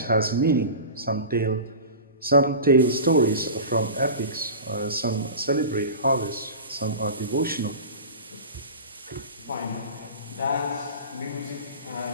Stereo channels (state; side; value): inverted; both; correlation -0.33